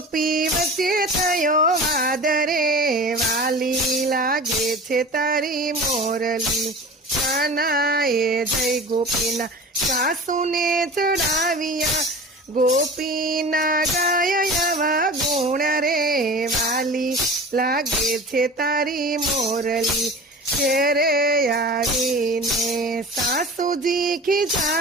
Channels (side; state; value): both; normal; correlation 0.37